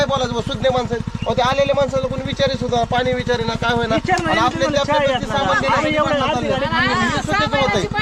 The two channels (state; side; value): identical; both; correlation 1.00